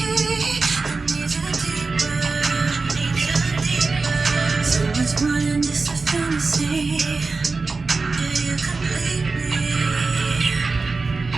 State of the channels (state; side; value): quieter; left; 4.0 dB